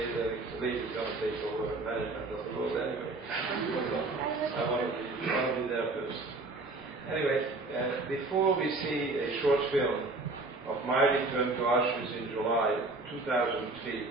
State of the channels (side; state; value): left; quieter; 3.2 dB